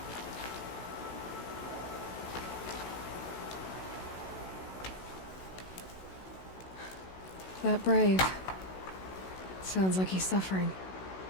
That brave. Sounds like he's suffering.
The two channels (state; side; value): late; right; 16 ms